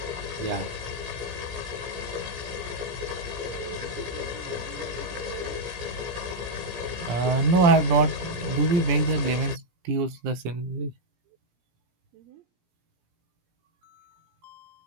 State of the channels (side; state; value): left; late; 17 ms